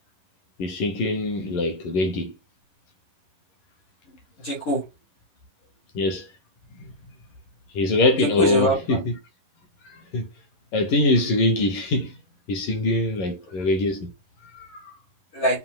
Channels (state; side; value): late; right; 11 ms